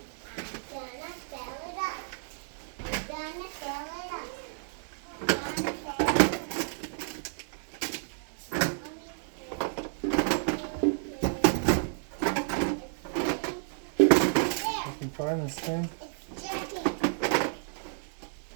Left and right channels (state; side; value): silent; left; digital silence